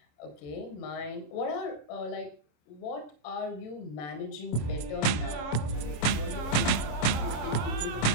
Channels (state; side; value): late; right; 26 ms